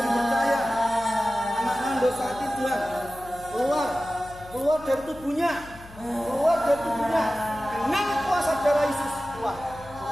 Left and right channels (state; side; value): noise; left; hum, 19 dB below the sound